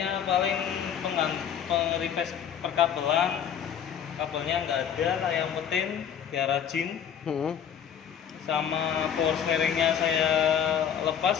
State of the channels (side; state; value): right; quieter; 8.5 dB